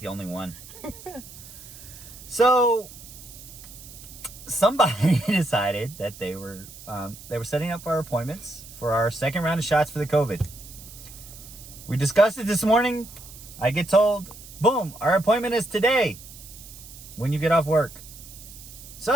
only one. So somebody decided that they were setting up our appointments for our second round of shots for the COVID. We discussed it this morning. I get told, boom, our appointment is today when you get off work.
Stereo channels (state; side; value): noise; right; hiss, 17 dB below the sound